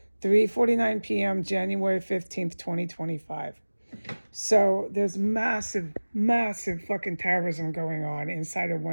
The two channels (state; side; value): inverted; both; correlation -1.00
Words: 3:49 p.m., January 15th, 2025. So there's massive fucking terrorism going on inside of